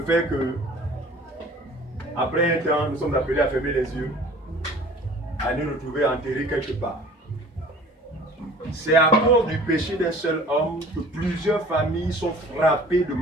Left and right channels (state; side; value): normal; both; correlation 0.47